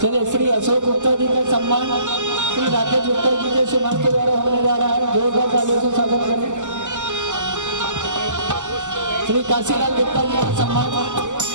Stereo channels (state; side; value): late; left; 0.85 ms